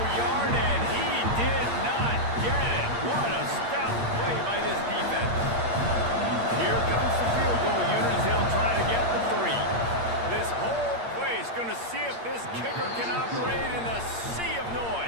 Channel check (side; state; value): left; late; 8.6 ms